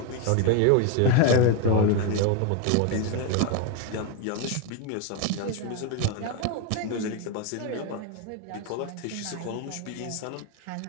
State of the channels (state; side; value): different; both; correlation 0.02